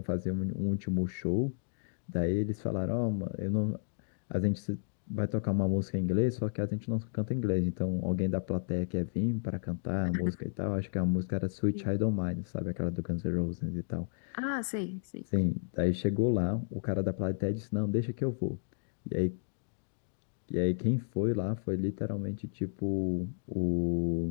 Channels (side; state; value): right; silent; digital silence